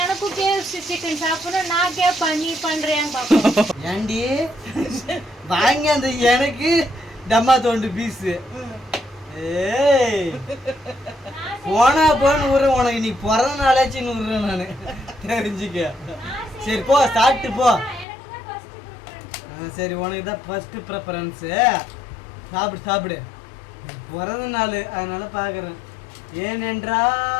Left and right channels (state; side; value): drops out; right; at 18.1 s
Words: எனக்கும் KFC சிக்கன் சாப்பிடணும். நான் கேட்பேன், நீ பண்றேன் பாப்போம். ஏண்டி வாங்க அந்த எனக்கு டம்மா தோண்டு பீஸு. ஏய் போனா போன்னு விடுறேன். உனக்கு நீ பிறந்த நாளாச்சுன்னு விடுறேன் நான், தெரிஞ்சுக்க. சரி போ, சாப்பிட்டு போ. சரி, உனக்கு தான் ஃபர்ஸ்ட் ப்ரிஃபரன்ஸு. சாப்பிடு. பிறந்த நாள், அதனால பார்க்குறேன்.